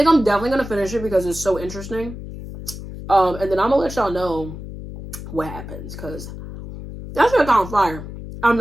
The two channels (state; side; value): noise; left; hum, 11 dB below the sound